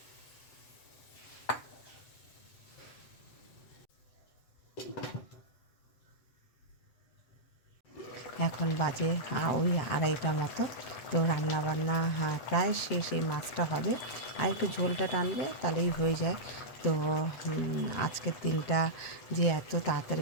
এখন বাজে ওই 2:30 মতো। তো রান্নাবান্না প্রায় শেষ, এই মাছটা হবে আর একটু ঝোলটা টানবে তাহলেই হয়ে যায়। তো আজকের দিনটা যে এত তাড়াতাড়ি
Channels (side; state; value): right; late; 7.8 ms